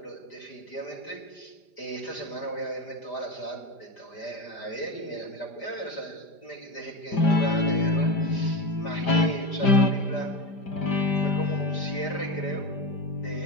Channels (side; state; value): right; late; 5.0 ms